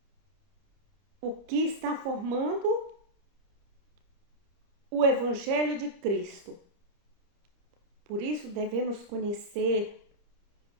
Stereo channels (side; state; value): left; late; 30 ms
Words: O que está formando o Evangelho de Cristo. Por isso devemos conhecer